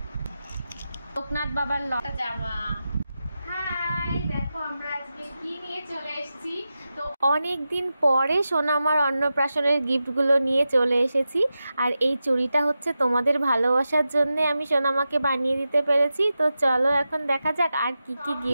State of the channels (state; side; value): inverted; both; correlation -0.91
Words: লোকনাথ বাবার লতা জামা। হাই, দেখো আমরা আজকে কি নিয়ে চলে এসেছি। তো অনেক দিন পরে সোনামার অন্নপ্রাশনের গিফটগুলো নিয়ে চলে এসেছি। আর এই চুড়িটা হচ্ছে তোমাদের ভালোবাসার জন্য আমি সোনামাকে বানিয়ে দিতে পেরেছি। তো চলো এখন দেখা যাক আর কি কি